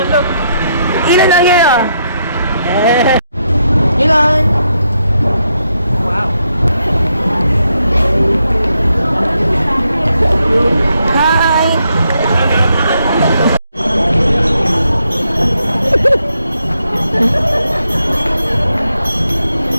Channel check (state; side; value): inverted; both; correlation -0.79